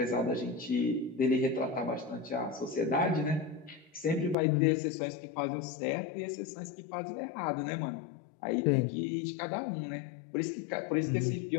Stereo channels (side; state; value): right; drops out; at 4.4 s